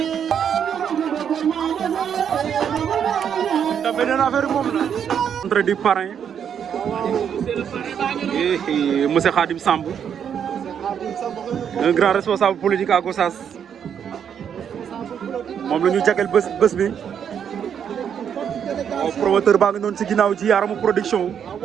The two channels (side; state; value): left; quieter; 8.2 dB